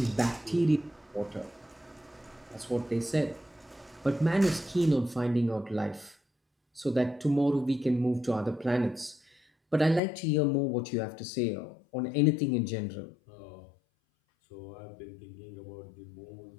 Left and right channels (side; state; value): right; drops out; at 10.0 s